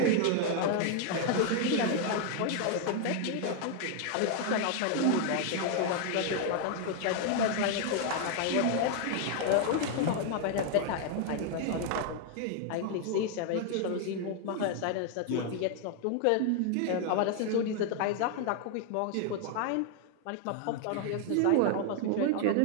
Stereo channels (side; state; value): both; different; correlation 0.00